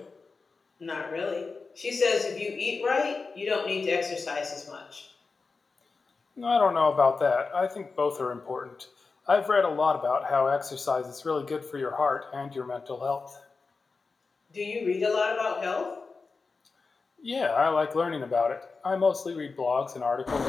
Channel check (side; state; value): right; quieter; 4.3 dB